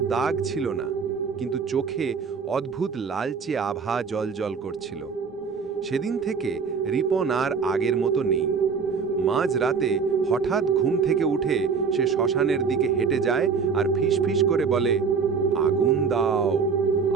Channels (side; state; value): left; quieter; 5.7 dB